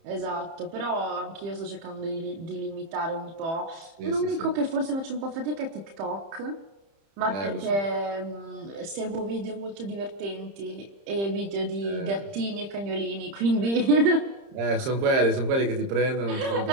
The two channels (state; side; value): late; left; 30 ms